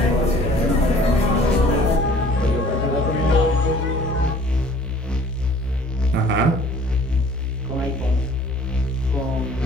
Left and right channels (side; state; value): both; normal; correlation 0.53